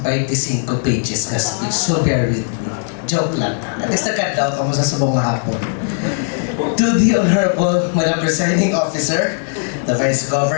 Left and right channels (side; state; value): right; silent; digital silence